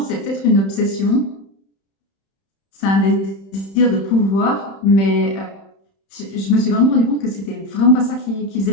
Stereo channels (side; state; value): right; late; 31 ms